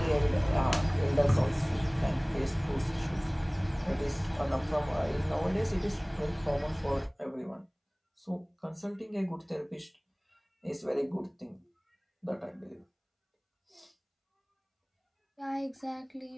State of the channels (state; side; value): identical; both; correlation 1.00